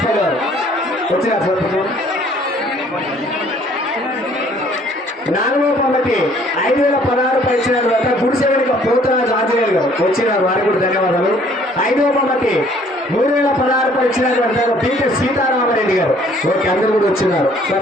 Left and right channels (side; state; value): both; normal; correlation 0.59